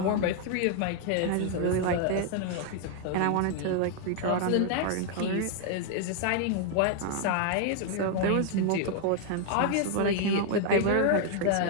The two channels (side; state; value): both; different; correlation 0.00